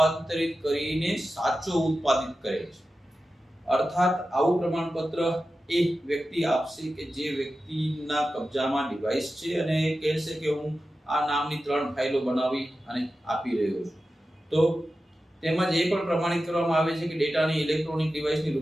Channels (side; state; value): both; normal; correlation 0.93